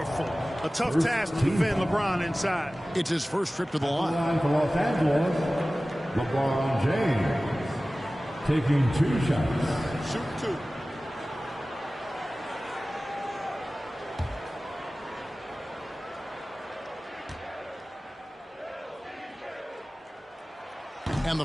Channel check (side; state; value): both; normal; correlation 0.97